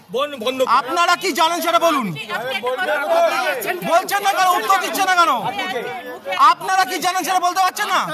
আপনারা কি জানেন সেটা বলুন। বলছেন না কেন, উত্তর দিচ্ছেন না কেন? আপনারা কি জানেন সেটা বলতে পারছেন না?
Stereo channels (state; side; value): identical; both; correlation 1.00